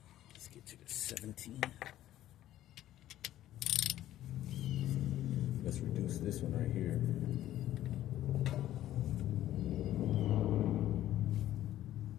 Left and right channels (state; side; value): quieter; right; 13.3 dB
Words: To the 17. Let's reduce this one right here.